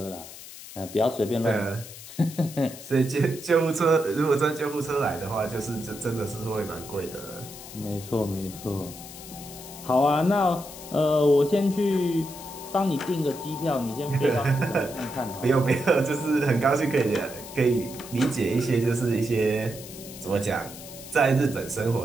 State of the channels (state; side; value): noise; left; hiss, 14 dB below the sound